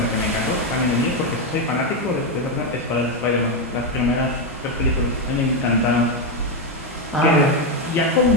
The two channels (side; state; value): both; normal; correlation 0.06